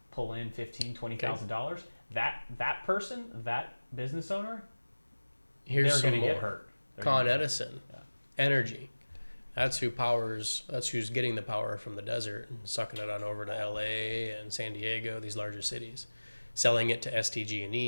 pull in $15,000, $20,000. That person, that business owner, they're going to get hurt. Con Edison, energy. That's who's getting the power from the desert and sucking it on over to LA and San Diego, these larger cities, selling it to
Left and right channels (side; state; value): both; inverted; correlation -1.00